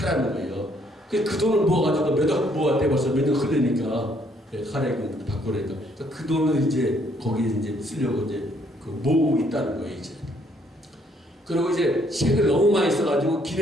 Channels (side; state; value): both; normal; correlation 0.67